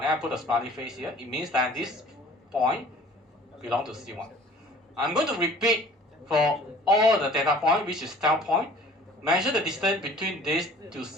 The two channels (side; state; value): both; normal; correlation 0.49